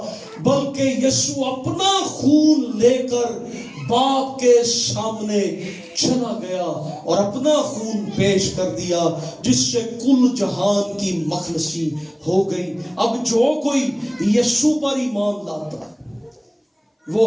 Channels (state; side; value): identical; both; correlation 1.00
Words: بلکہ یسوع اپنا خون لے کر باپ کے سامنے چلا گیا اور اپنا خون پیش کر دیا، جس سے کل جہان کی مخلصی ہو گئی. اب جو کوئی یسوع پر ایمان لاتا ہے وہ